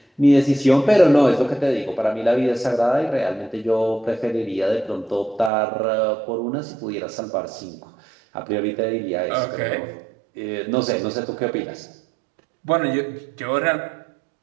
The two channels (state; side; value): drops out; left; at 5.5 s